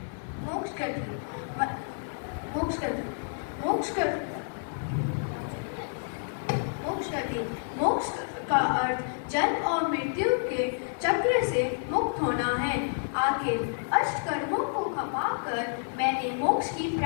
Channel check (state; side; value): silent; right; 58 dB below the other